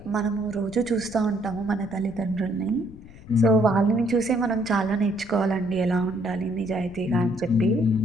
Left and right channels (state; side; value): noise; left; rumble, 19 dB below the sound